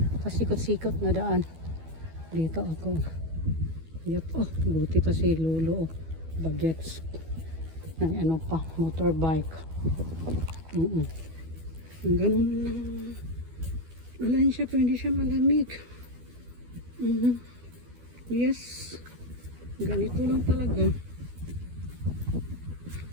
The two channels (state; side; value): late; left; 12 ms